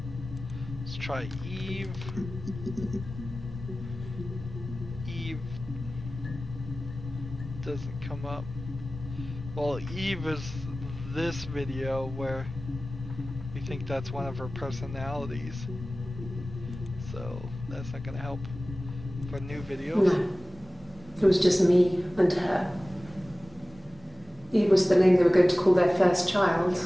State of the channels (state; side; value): normal; both; correlation 0.97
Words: Let's try Eve. Eve doesn't come up. Well, Eve is this video where we think that's one of her personalities. So that's not gonna help for new videos. No. It was just me and her. Eve was the name they were going to call their first child.